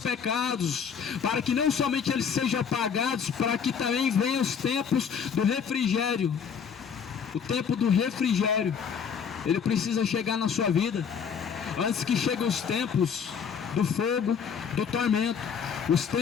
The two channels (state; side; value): quieter; right; 6.9 dB